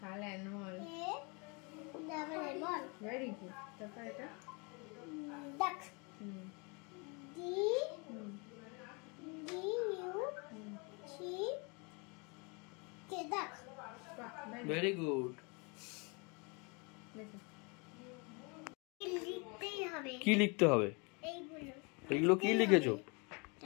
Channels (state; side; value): quieter; right; 31.2 dB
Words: Very good. তারপর এটা ভেরি গুড। কি লিখতে হবে? এইগুলো কি লিখেছো?